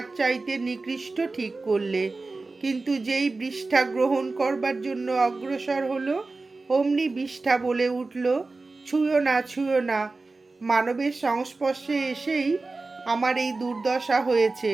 চাইতে নিকৃষ্ট ঠিক করলে। কিন্তু যেই বৃষ্ঠা গ্রহণ করবার জন্য অগ্রসর হলো, অমনি বৃষ্ঠা বলে উঠল, ছুঁয়ো না, ছুঁয়ো না। মানবের সংস্পর্শে এসেই আমার এই দুর্দশা হয়েছে।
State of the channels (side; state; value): left; quieter; 3.6 dB